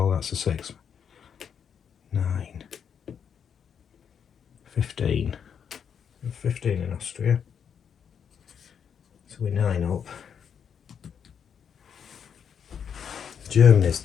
That's a 6. 9. 15. 15 in Austria. So we're 9 up. Germany's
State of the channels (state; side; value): quieter; right; 7.6 dB